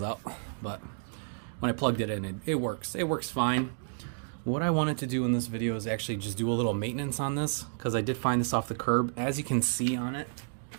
out, but when I plugged it in, it works. It works fine. What I wanted to do in this video is actually just do a little maintenance on this, because I did find this off the curb. As you can see on it,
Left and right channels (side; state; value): left; silent; digital silence